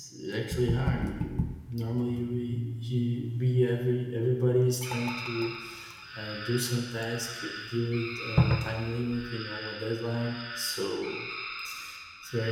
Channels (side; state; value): both; identical; correlation 1.00